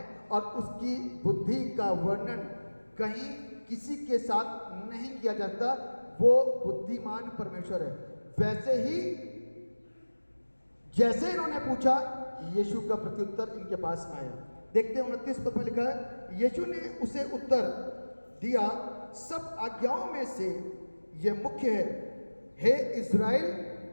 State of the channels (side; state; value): both; inverted; correlation -1.00